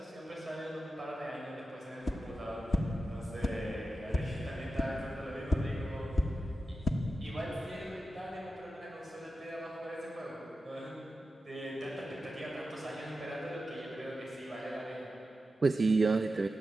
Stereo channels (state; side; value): normal; both; correlation 0.91